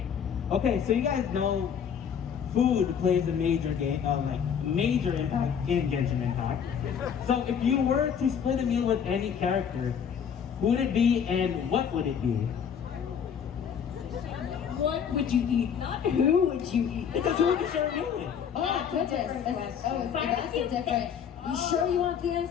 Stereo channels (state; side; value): quieter; right; 7.6 dB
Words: Okay, so you guys know food plays a major major impact in Genshin Impact. So if you were to split a meal with any character, who would it be and what would it be? What would you eat? Not who would you eat? Because who would you share a meal with? Oh, goodness. That's a different. You sure you want the